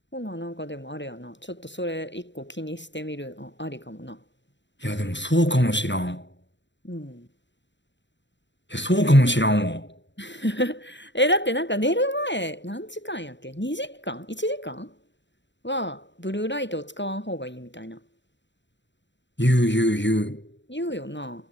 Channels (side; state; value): right; late; 0.53 ms